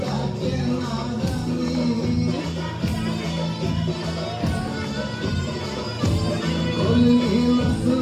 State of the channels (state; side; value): identical; both; correlation 1.00